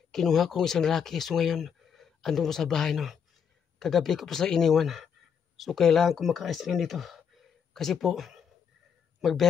kinuha ko isang lalaki. So ngayon, andun po sa bahay, no? Kagabi ko po sa iniwan. So kailangan ko makaalis ngayon dito. Kasi po,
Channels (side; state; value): right; quieter; 7.4 dB